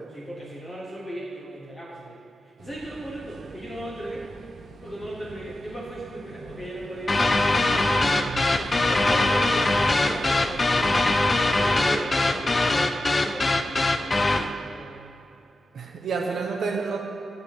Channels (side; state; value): both; normal; correlation 0.92